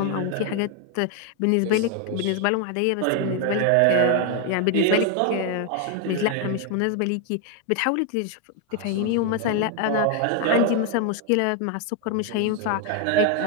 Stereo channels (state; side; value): different; both; correlation 0.01